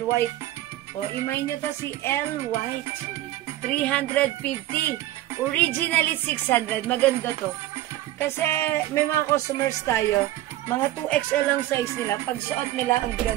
white. O, imayin nyo to si L white, 350. Originally 600. Maganda to. Kasi may mga customers tayo, mga 2XL lang size nila. Pag suot nila, ang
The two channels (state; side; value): quieter; left; 14.9 dB